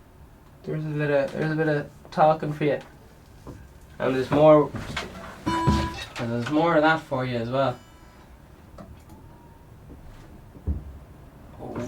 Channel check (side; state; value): both; identical; correlation 1.00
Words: There's a bit of talking for you, and there's more of that for you as well.